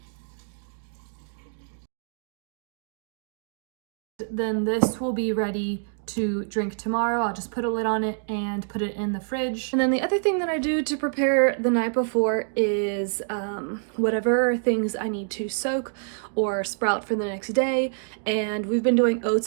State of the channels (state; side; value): silent; left; digital silence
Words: Then this will be ready to drink tomorrow. I'll just put a lid on it and put it in the fridge. And then the other thing that I do to prepare the night before is whatever things I need to soak or sprout for the next day. And we've been doing